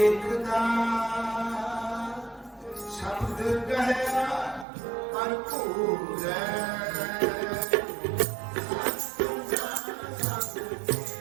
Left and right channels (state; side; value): drops out; left; at 4.7 s